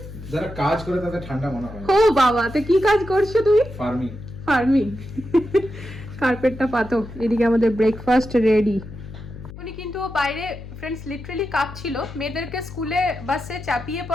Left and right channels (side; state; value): left; noise; hum, 13 dB below the sound